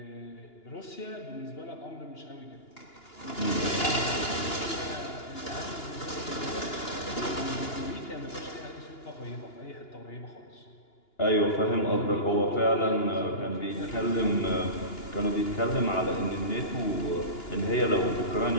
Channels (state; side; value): late; right; 2.9 ms